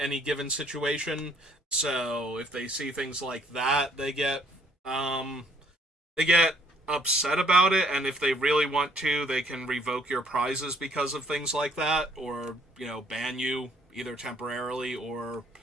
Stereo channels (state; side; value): normal; both; correlation 0.63